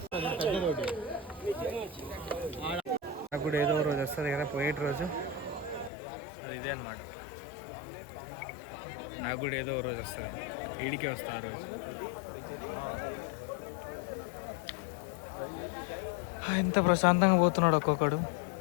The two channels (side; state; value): right; drops out; at 5.9 s